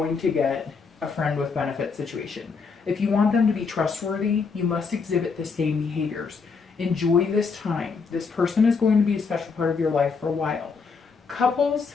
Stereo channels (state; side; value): quieter; right; 5.0 dB